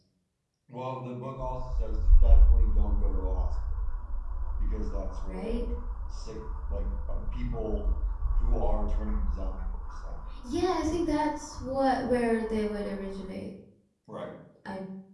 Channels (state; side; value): identical; both; correlation 1.00